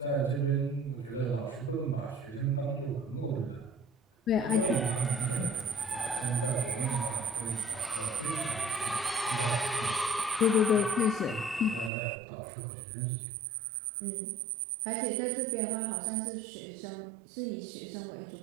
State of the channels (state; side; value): drops out; left; at 11.9 s